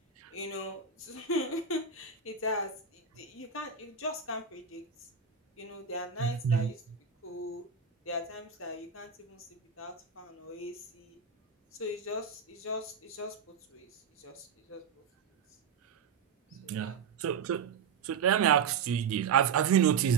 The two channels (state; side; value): quieter; left; 6.1 dB